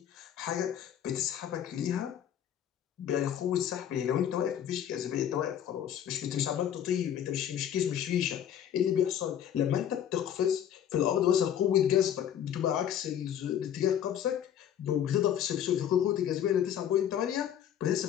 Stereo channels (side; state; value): right; quieter; 9.9 dB